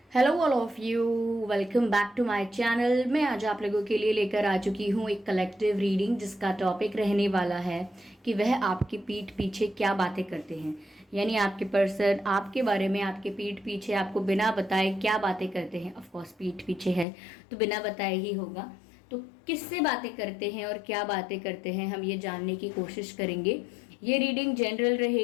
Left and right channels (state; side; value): drops out; right; at 17.1 s